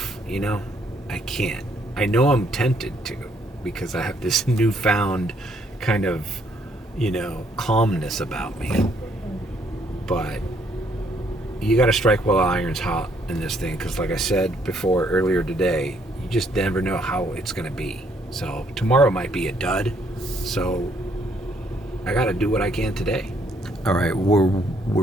I can't. I know I'm tempted to, because I have this newfound kind of, calmness about me. But you got to strike while the iron's hot in this thing, because like I said before earlier today, you just never know how it's going to be. So tomorrow might be a dud. So I got to do what I can today. All right, we're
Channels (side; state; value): both; normal; correlation 0.69